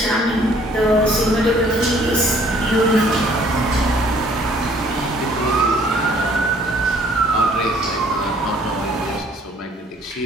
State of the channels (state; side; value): normal; both; correlation 0.59